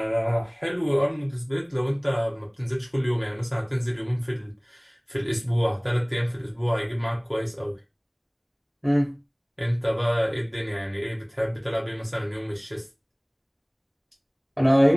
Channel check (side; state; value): both; identical; correlation 1.00